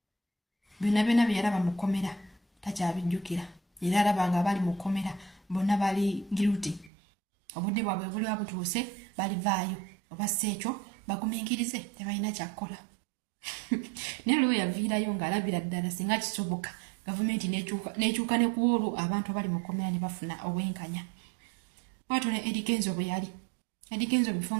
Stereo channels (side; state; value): left; drops out; at 6.9 s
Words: byonna bye yalaba mu kkomera takyabijjukira era alaba nga bali mu kkomera bonna bali guilty obudde bwabwe buli butuuse balivaayo oba ekyo bagumiikirize tebalina kyakkola naye lwe yaviirayo ng'alabira ddala singa kisoboka gavumenti n'ekyuka ne ku olwo abantu abali mu kkomera ne bafuna obwenkanya bw'atyo ne Eddy Kenzo bwe yali Eddy Kenzo bifo